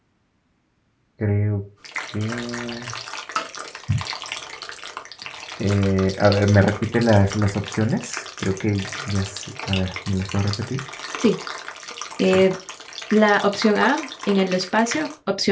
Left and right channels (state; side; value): identical; both; correlation 1.00